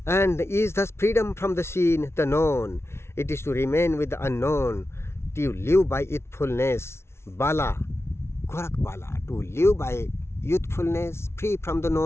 and is thus freedom from the seen, the known. It is to remain with the unknown, to live by youthfulness, bala, Gorakh bala, to live by youthfulness, free from the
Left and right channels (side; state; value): right; late; 0.12 ms